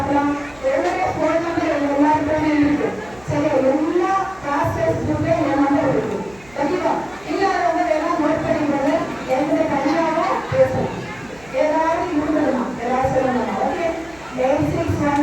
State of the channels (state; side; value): noise; right; hum, 26 dB below the sound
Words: என்னுடைய போன் நம்பர் எல்லாருக்குமே இருக்கு. சரியா? எல்லா கிளாஸஸ்க்குமே என் நம்பர் இருக்கு. ஓகேவா? இல்லாதவங்க வேணா நோட் பண்ணிக்கிறது. என்னுடைய தனியாக பேசலாம். ஏதாவது இருந்ததுன்னா ஏதாவது சொல்லணும். ஓகே,